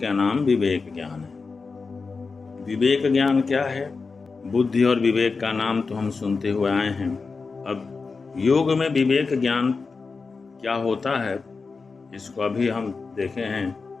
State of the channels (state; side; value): quieter; right; 4.5 dB